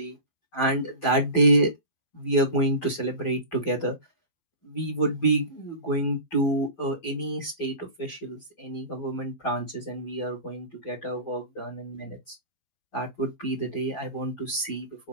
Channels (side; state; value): right; late; 12 ms